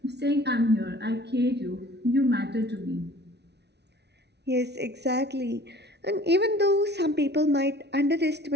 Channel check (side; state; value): left; late; 0.49 ms